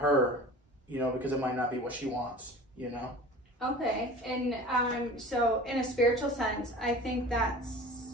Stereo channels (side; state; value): both; normal; correlation 0.40